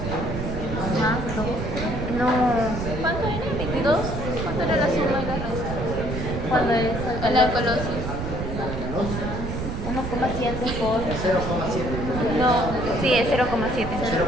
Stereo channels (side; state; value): right; noise; rumble, 4 dB below the sound